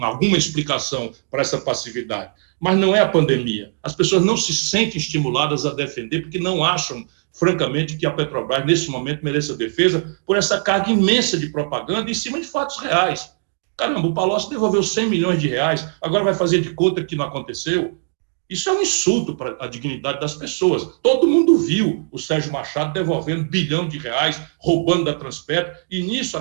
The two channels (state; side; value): silent; left; digital silence